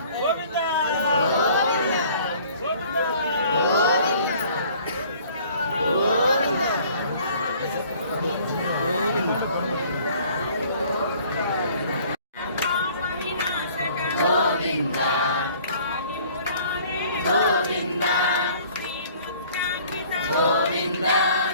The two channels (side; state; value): both; inverted; correlation -0.54